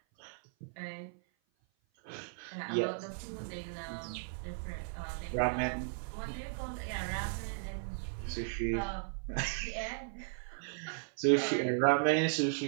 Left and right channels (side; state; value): left; silent; 54 dB below the other